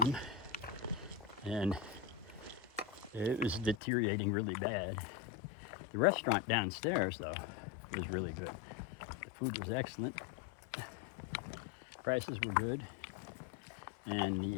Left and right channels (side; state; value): right; drops out; at 3.8 s